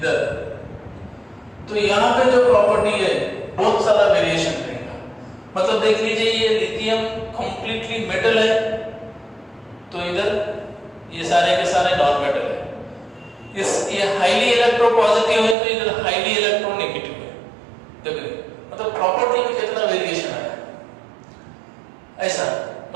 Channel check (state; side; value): drops out; left; at 15.6 s